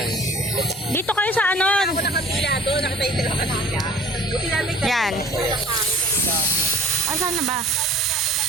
Dito kayo sa ano? Ako nakapila doon, nakatayo sila kanila. Buti namin Yan. Asan na ba?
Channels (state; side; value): normal; both; correlation 0.49